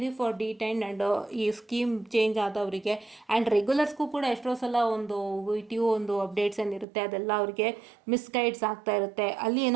ಫಾರ್ ಡಿಟೈನ್ಡ್ ಆ್ಯಂಡ್ ಈ ಸ್ಕೀಮ್ ಚೇಂಜ್ ಆದವರಿಗೆ. ಆ್ಯಂಡ್ ರೆಗ್ಯುಲರ್ಸ್ಗೂ ಕೂಡ ಎಷ್ಟೋ ಸಲ ಒಂದು VTU ಒಂದು ಅಪ್ಡೇಟ್ಸ್ ಏನಿರುತ್ತೆ ಅದೆಲ್ಲ ಅವರಿಗೆ ಮಿಸ್ಗೈಡ್ಸ್ ಆಗ್ತಾ ಇರುತ್ತೆ. ಅಲ್ಲಿ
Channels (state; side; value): drops out; left; at 6.9 s